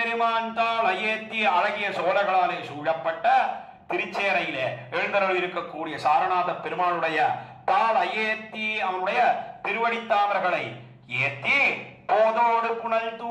தாளையேத்தி, அழகிய சோழர்களாலே சூழப்பட்ட திருச்சேரையிலே எழுந்தருள் இருக்கக்கூடிய சாரநாத பெருமானுடைய தாள் அயேத்தி, அவனுடைய திருவடித்தாமர்களை ஏத்தி போதோடு புனல்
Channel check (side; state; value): both; identical; correlation 1.00